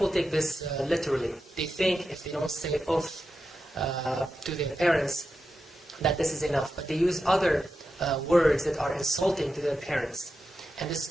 take this literally. They think if they don't say uff to their parents, that this is enough. But they use other words that are insulting to their parents. And this is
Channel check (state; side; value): normal; both; correlation 0.89